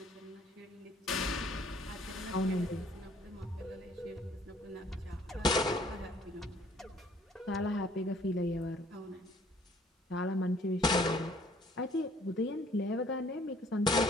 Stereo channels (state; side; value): normal; both; correlation 0.59